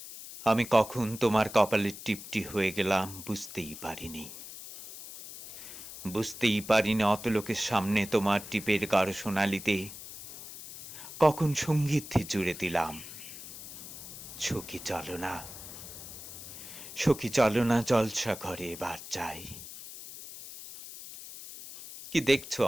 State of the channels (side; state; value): left; noise; hiss, 13 dB below the sound